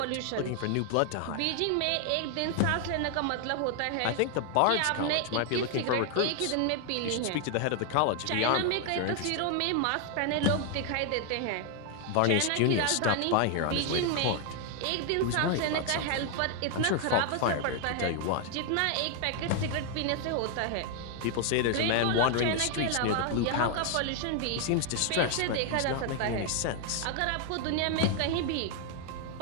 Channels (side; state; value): both; different; correlation 0.00